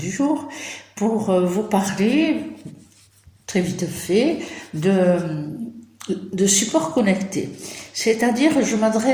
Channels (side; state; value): both; identical; correlation 1.00